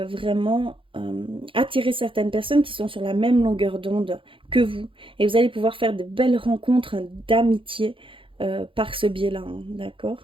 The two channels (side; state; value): left; late; 0.25 ms